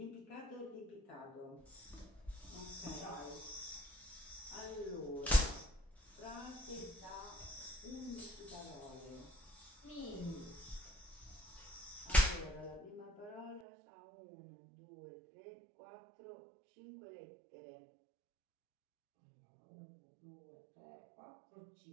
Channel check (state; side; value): drops out; left; at 13.7 s